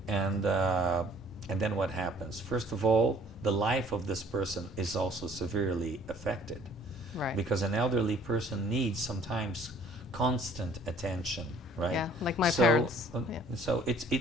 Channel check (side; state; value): both; normal; correlation 0.55